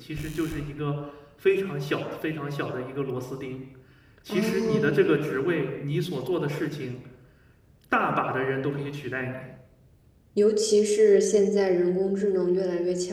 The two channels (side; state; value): both; identical; correlation 1.00